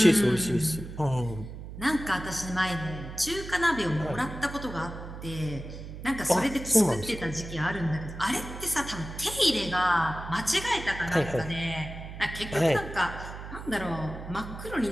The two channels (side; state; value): right; noise; hum, 11 dB below the sound